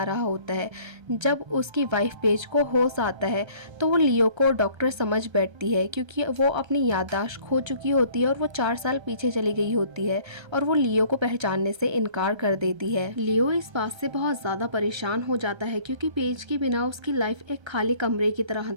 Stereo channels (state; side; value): late; left; 1.3 ms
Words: रहा होता है। जब उसकी वाइफ पेज को होश आता है तो वो लियो को डॉक्टर समझ बैठती है क्योंकि वो अपनी याददाश्त खो चुकी होती है और वो 4 साल पीछे चली गई होती है और वो लियो को पहचानने से इनकार कर देती है। लियो इस बात से बहुत ज़्यादा परेशान हो जाता है क्योंकि पेज के बिना उसकी लाइफ एक खाली कमरे की तरह